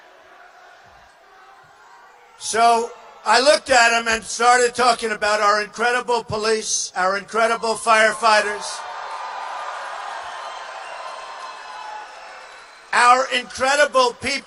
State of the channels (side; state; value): both; identical; correlation 1.00